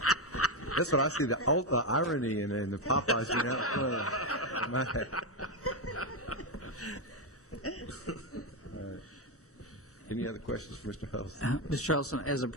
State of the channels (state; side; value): normal; both; correlation 0.07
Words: That's what I see, the irony in the Popeyes being out front. Any other questions for Mr. Huddleston? Mr. Charleston, as a